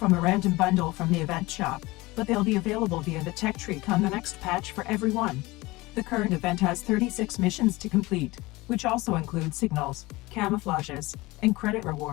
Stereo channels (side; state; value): right; quieter; 21.2 dB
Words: a random bundle from the event shop, but they'll be available via the tech tree come the next patch for everyone. The current event has 36 missions to complete, which also include signals, camouflages, and credit